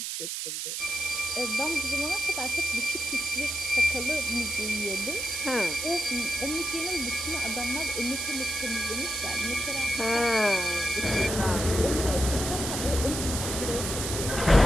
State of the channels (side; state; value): right; noise; hiss, 3 dB below the sound